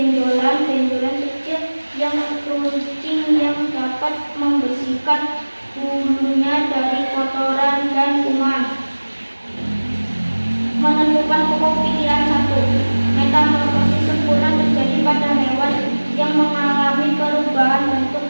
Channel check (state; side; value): inverted; both; correlation -1.00